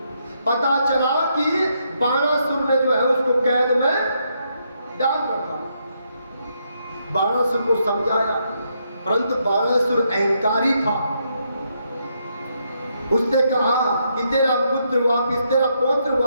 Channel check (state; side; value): inverted; both; correlation -0.77